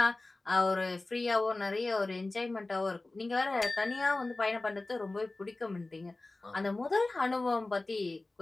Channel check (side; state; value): right; quieter; 3.1 dB